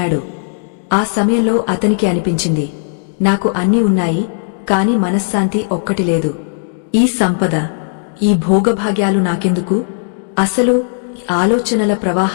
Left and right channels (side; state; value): right; silent; digital silence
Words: ఆ సమయంలో అతనికి అనిపించింది, నాకు అన్నీ ఉన్నాయి, కాని మనశ్శాంతి ఒక్కటి లేదు. ఈ సంపద, ఈ భోగభాగ్యాలు నాకెందుకు? అసలు ఆలోచనల